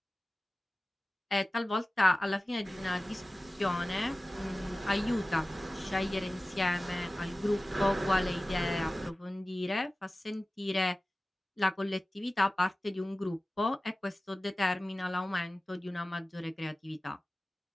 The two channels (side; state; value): both; normal; correlation 0.96